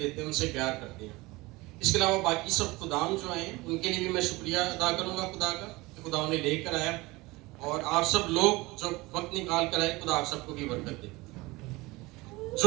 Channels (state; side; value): quieter; left; 22.0 dB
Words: ہیں, ان سے پیار کرتے ہیں. اس کے علاوہ باقی سب خدام جو ہیں ان کے لیے بھی میں شکریہ ادا کروں گا خدا کا کہ خدا انہیں لے کر آیا, اور آپ سب لوگ جو وقت نکال کر آئے, خدا آپ سب کو بھی برکت دے.